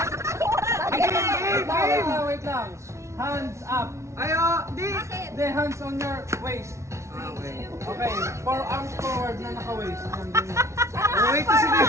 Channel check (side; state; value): left; late; 0.14 ms